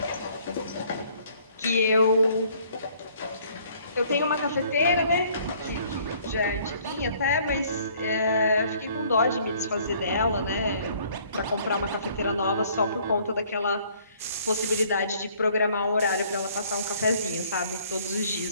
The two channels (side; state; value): both; inverted; correlation -0.59